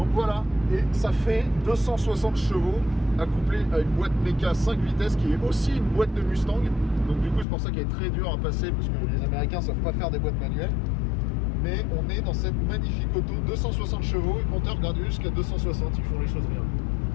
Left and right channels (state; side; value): drops out; right; at 7.5 s